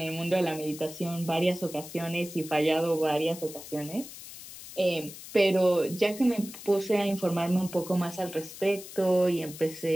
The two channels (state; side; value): noise; left; hiss, 14 dB below the sound